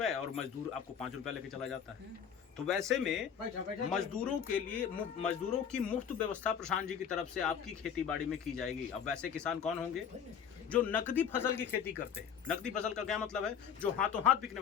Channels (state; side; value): quieter; right; 8.0 dB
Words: और मजदूर आपको 5 रुपए लेके चला जाता है। तो वैसे में मजदूरों के लिए मजदूरों की मुफ्त व्यवस्था प्रशांत जी की तरफ से आपकी खेती बाड़ी में की जाएगी। अब वैसे किसान कौन होंगे? जो नकदी फसल की खेती करते हैं। नकदी फसल का क्या मतलब है? जो हाथों हाथ बिकने